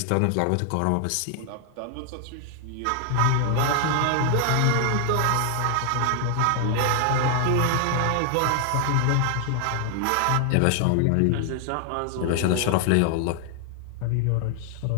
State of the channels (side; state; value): both; different; correlation 0.00